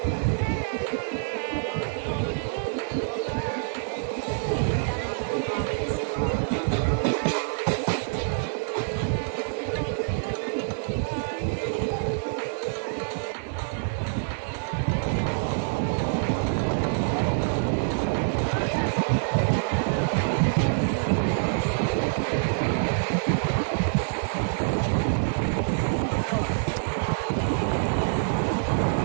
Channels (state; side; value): silent; left; 61 dB below the other